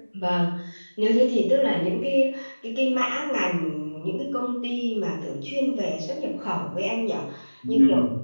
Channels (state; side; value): inverted; both; correlation -1.00